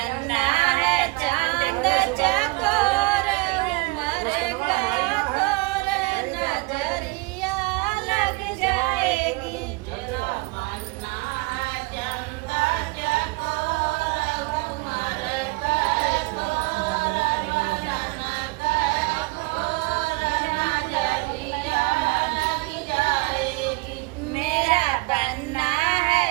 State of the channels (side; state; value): left; quieter; 25.7 dB